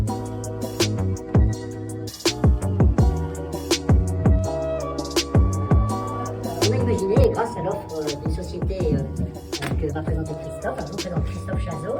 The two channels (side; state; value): both; identical; correlation 1.00